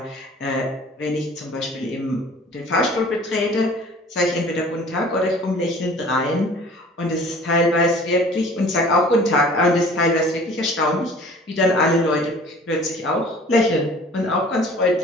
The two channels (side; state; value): both; normal; correlation 0.48